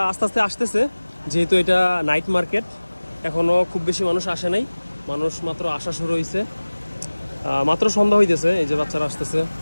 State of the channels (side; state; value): both; inverted; correlation -1.00